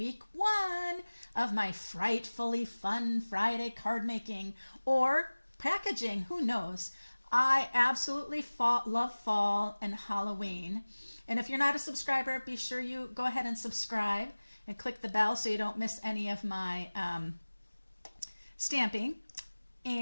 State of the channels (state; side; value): inverted; both; correlation -1.00